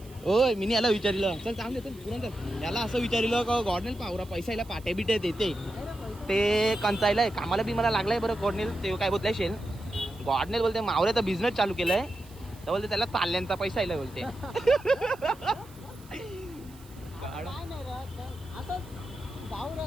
ओय मी याला विचारिलं. चल चांगले चल पुरण चल. याला असं विचारिलं का गॉडनेल पावरा पैसा याला पाट्या बिट्या देते. ते कंचायलाय कामाला बी मला लागलाय बरं. गॉडनेल ते काय बोलताय शेल. गॉडनेल बोलते मावऱ्याचा बिझनेस चालू केलाय. तर बोलते त्याला ताल्ल्यांचा पैसा यायला बोलते.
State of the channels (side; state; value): right; noise; hiss, 24 dB below the sound